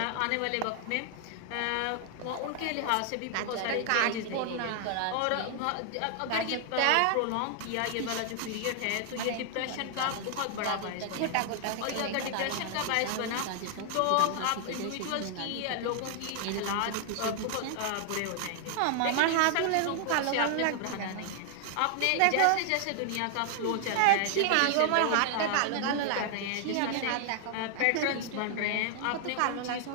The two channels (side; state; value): both; different; correlation 0.00